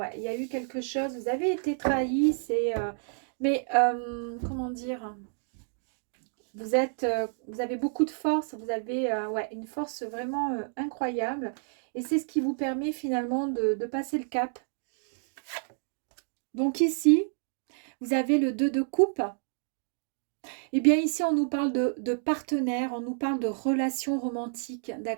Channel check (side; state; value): left; silent; digital silence